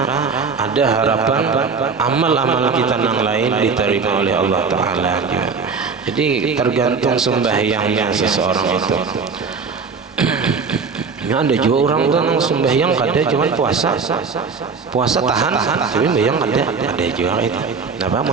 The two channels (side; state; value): left; quieter; 5.2 dB